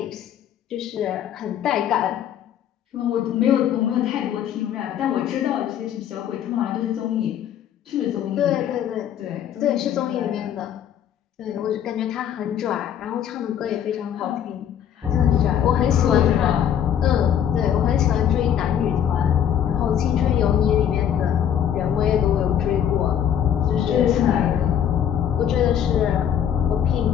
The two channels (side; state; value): right; quieter; 9.5 dB